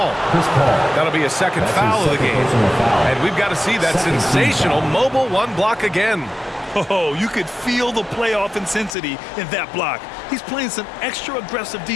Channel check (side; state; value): right; drops out; at 9.0 s